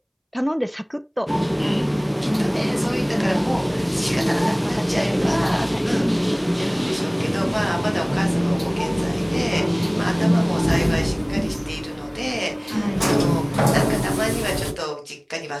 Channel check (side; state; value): both; identical; correlation 1.00